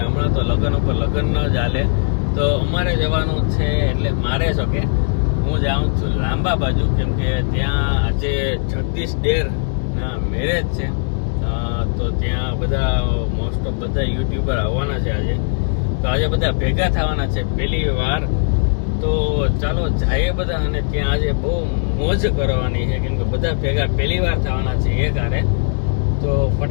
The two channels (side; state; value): right; silent; 67 dB below the other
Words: હમણાં તો લગ્ન ઉપર લગ્ન ન જ હાલે, તો અમારે જવાનું છે. એટલે મારે જો કે હું જાઉં છું લાંબા બાજુ, કેમ કે ત્યાં આજે જગદીશ ડેર ના મેરેજ છે. તો ત્યાં બધા મોસ્ટ ઓફ બધા યુટ્યુબર આવવાના છે આજે. તો આજે બધા ભેગા થવાના છે પહેલી વાર. તો ચાલો જઈએ બધા, અને ત્યાં આજે બહુ મોજ કરવાની છે, કેમ કે બધા ભેગા પહેલી વાર થવાના છે એક હારે. તો